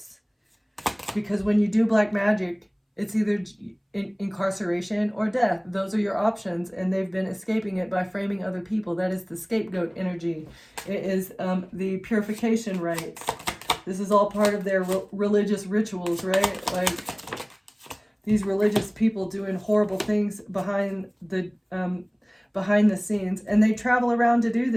Because when you do black magic, it's either incarceration or death. Those are your options, and they've been escaping it by framing other people. That is the scapegoat energy. It is the purification rites. This is all part of their religious rituals, right? Like these religious people doing horrible things behind the scenes, and they travel around to do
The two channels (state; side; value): identical; both; correlation 1.00